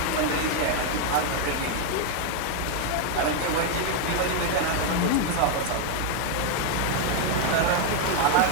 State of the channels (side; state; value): both; different; correlation 0.01